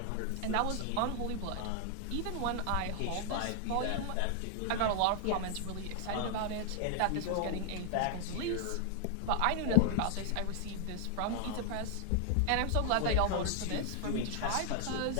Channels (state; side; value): different; both; correlation 0.00